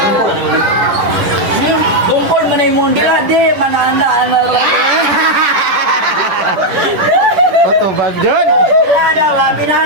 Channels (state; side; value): late; left; 10 ms